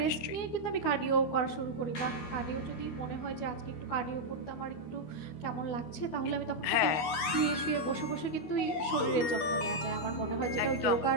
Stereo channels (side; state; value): right; late; 12 ms